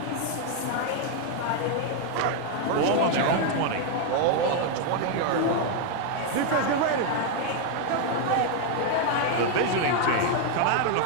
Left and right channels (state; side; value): different; both; correlation 0.00